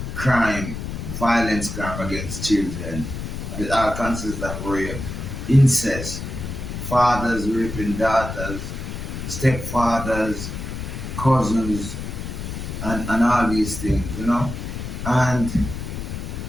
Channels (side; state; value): left; noise; rumble, 6 dB below the sound